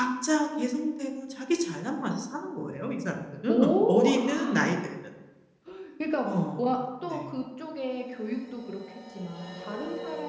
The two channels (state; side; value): identical; both; correlation 1.00